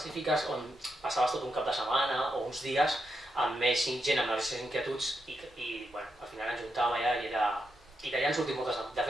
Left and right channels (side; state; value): both; normal; correlation 0.83